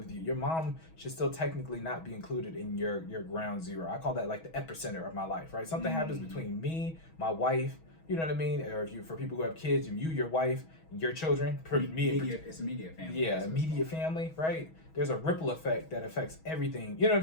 you, your mom should still technically not be included in your ground zero. I call that like the epicenter of my life, right? Something happens between me, my wife, you know what I mean? Or for people who have kids, you, your wife, your children, It's immediate family. Yeah, immediate family, right? There's a ripple effect that affects everything. You know what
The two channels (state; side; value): late; right; 6.2 ms